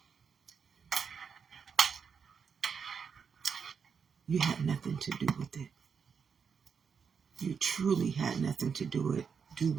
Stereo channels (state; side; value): quieter; left; 6.3 dB